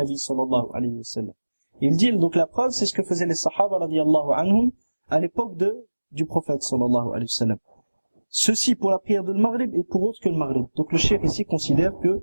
صلى الله عليه وسلم. Il dit, donc la preuve, c'est ce que faisaient les sahaba radiyallahu anhum à l'époque du prophète sallallahu alayhi wa sallam. Ceci pour la prière de Maghrib et pour autre que le Maghrib. Donc le cheikh ici considère que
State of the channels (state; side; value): inverted; both; correlation -1.00